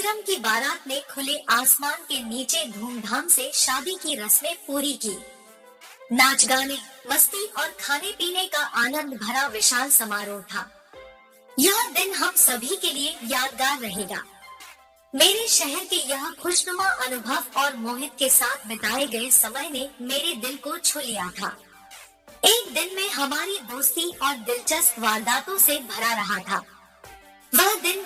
की बारात ने खुले आसमान के नीचे धूमधाम से शादी की रस्में पूरी की। नाच गाने, मस्ती और खाने पीने का आनंद भरा विशाल समारोह था। यह दिन हम सभी के लिए यादगार रहेगा। मेरे शहर के यह खुशनुमा अनुभव और मोहित के साथ बिताए गए समय ने मेरे दिल को छू लिया था। एक दिन में हमारी दोस्ती और दिलचस्प वारदातों से भरा रहा था। वह दिन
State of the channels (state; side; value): identical; both; correlation 1.00